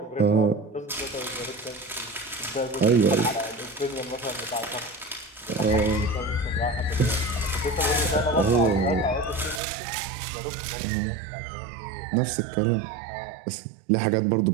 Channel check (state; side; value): drops out; left; at 9.6 s